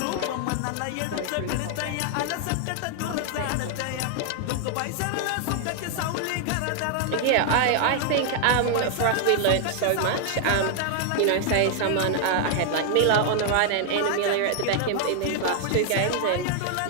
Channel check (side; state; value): both; different; correlation 0.00